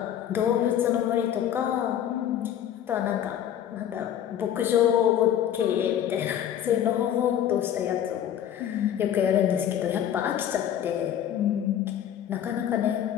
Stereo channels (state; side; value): quieter; right; 10.3 dB